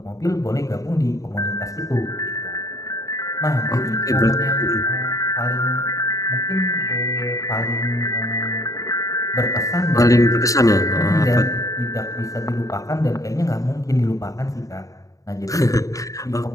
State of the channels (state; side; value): late; right; 0.16 ms